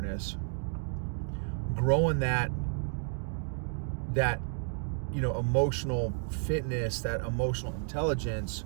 growing that emotional fitness, that emotional intelligence,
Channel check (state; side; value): silent; left; 57 dB below the other